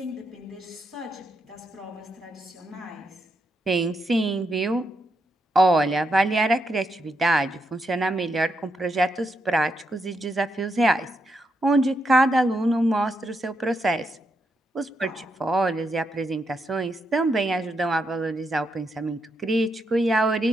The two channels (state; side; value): normal; both; correlation 0.81